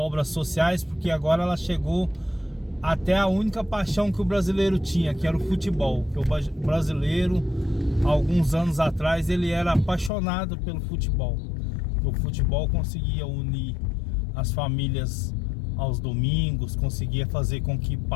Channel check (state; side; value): drops out; right; at 10.1 s